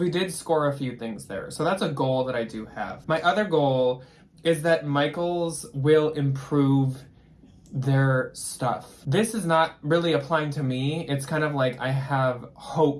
did score a few things there. So that's a goal that I do have. My other goal is that Michael's will improve their stuff. This is not really applying to me. It's kind of like I have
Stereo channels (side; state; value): both; identical; correlation 1.00